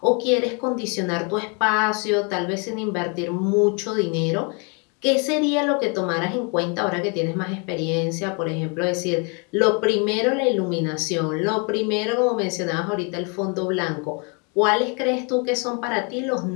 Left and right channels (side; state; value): right; quieter; 34.4 dB